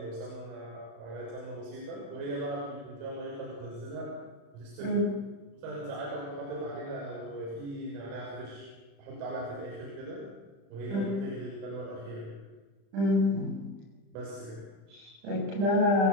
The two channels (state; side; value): late; left; 35 ms